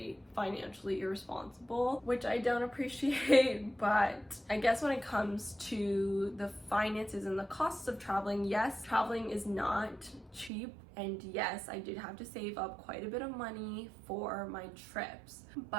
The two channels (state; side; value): drops out; left; at 10.5 s